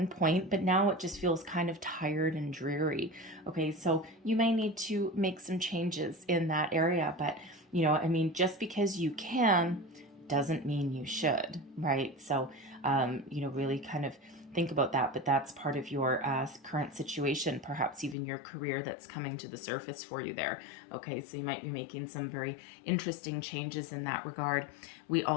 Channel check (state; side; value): drops out; right; at 18.2 s